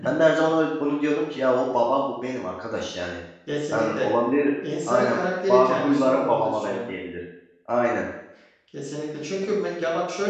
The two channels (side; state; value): both; identical; correlation 1.00